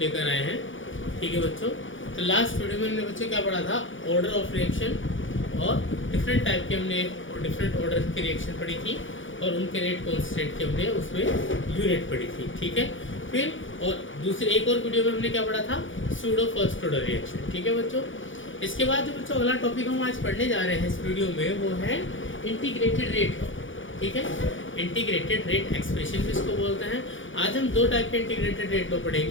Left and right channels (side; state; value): right; late; 0.56 ms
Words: आए हैं। ठीक है बच्चों, तो लास्ट वीडियो में हमने बच्चों क्या पढ़ा था, ऑर्डर ऑफ रिएक्शन और डिफरेंट टाइप के हमने डिफरेंट ऑर्डर की रिएक्शन पढ़ी थी और उनके रेट कॉन्स्टेंट के हमने उसमें यूनिट पढ़ी थी। ठीक है, फिर और दूसरे एक और वीडियो में हमने क्या पढ़ा था, सूडो फर्स्ट ऑर्डर रिएक्शन। ठीक है बच्चों, इसके बाद जो बच्चों अगला टॉपिक हम आज पढ़ने जा रहे हैं इस वीडियो में वो है इंटीग्रेटेड रेट। ठीक है, इंटीग्रेटेड रेट एक्सप्रेशन भी इसको बोलते हैं। आज हम दो टाइप के इंटीग्रेटेड रेट लो